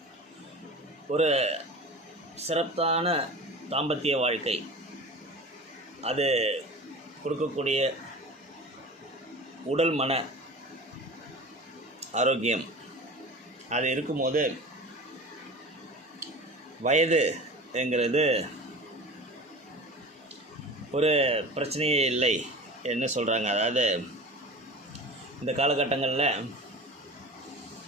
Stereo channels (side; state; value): both; normal; correlation 0.36